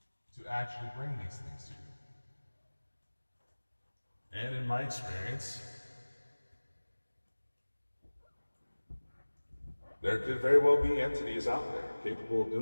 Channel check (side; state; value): both; inverted; correlation -1.00